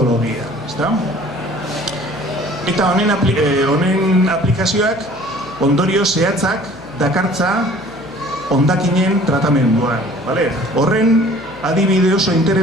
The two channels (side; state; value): left; noise; hum, 22 dB below the sound